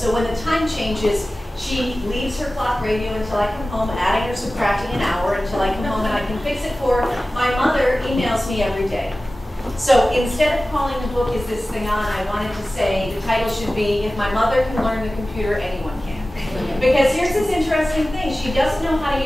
when the time changes, she leaves her clock radio until I come home, adding or subtracting an hour until I come home and I can fix it for her. My mother emails me every day. So instead of calling the book, Is This Thing On?, I wanted to say the title should be, If My Mother Can Learn the Computer, Anyone Can. Because here's this interesting thing. She doesn't know how to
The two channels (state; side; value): normal; both; correlation 0.96